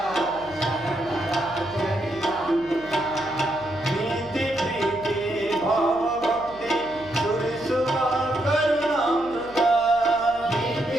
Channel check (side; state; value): right; noise; hum, 22 dB below the sound